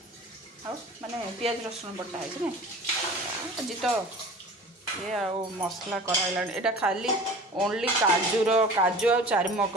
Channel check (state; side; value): normal; both; correlation 0.41